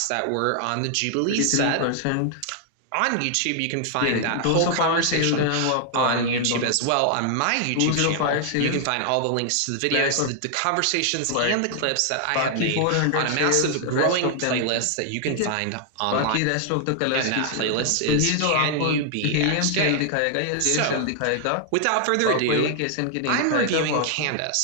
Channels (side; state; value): both; different; correlation 0.00